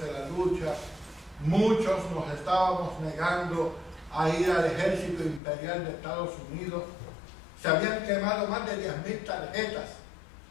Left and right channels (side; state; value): right; drops out; at 5.4 s